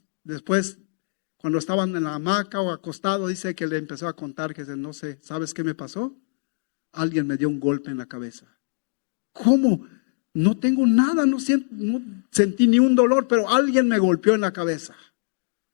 después, cuando estaban en la hamaca o acostado, dice que le empezó a contar que no sé, ¿sabes qué me pasó? Alguien me dio un golpe en la cabeza. ¿Cómo? No tengo nada, no sentí ni un dolor, pero alguien me golpeó en la cabeza.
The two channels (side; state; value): right; silent; digital silence